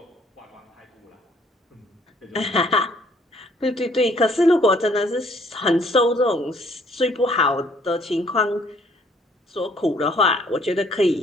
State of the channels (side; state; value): both; normal; correlation 0.62